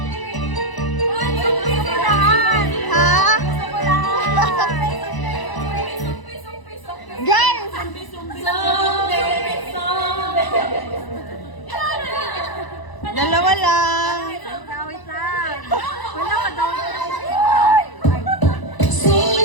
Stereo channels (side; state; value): right; late; 1.0 ms